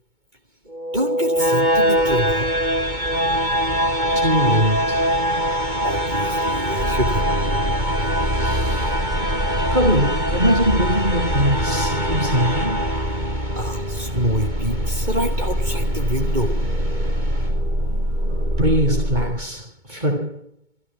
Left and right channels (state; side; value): late; left; 2.2 ms